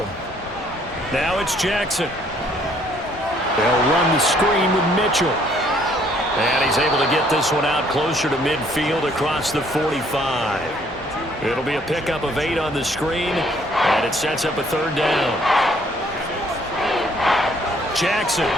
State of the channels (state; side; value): normal; both; correlation 0.63